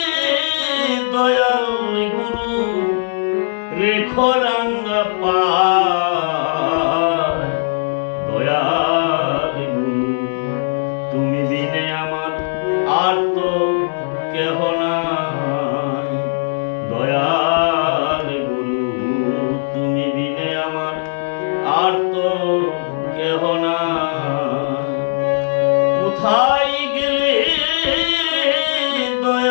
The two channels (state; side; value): silent; right; digital silence